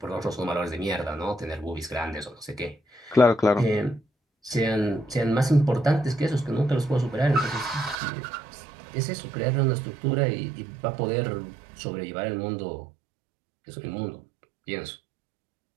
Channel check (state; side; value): drops out; left; at 8.0 s